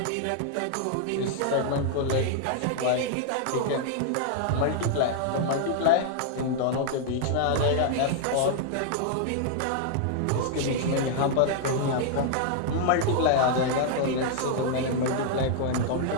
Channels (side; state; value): both; different; correlation -0.01